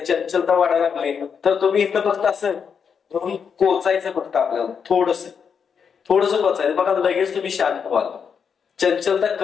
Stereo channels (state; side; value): quieter; right; 6.7 dB